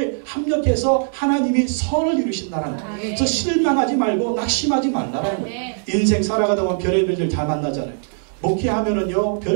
합력해서 하나님이 선을 이루신다는 거예요. 그래서 실망하지 말고 낙심하지 말라는 거예요. 인생 살아가다 보면 별의별 일 다 만나잖아요. 목회하면은요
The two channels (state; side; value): silent; left; digital silence